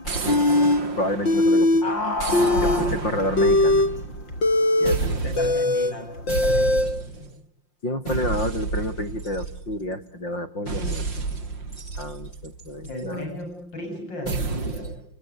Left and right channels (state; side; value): late; right; 5.7 ms